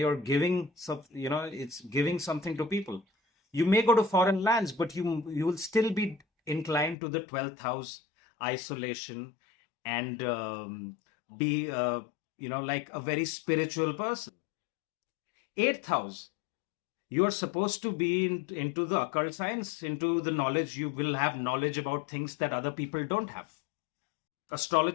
giving some, it's giving something to people. You may go to foreign lands, but you will still be inclined to the 12th house, isolation, and be like a very spiritual person. 8th house, you're supposed to be into the occult science, into the knowledge. You will have knowledge about things that other people don't have.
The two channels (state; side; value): drops out; right; at 7.0 s